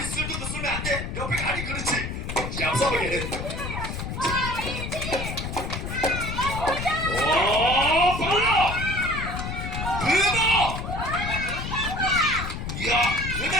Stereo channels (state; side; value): noise; left; rumble, 5 dB below the sound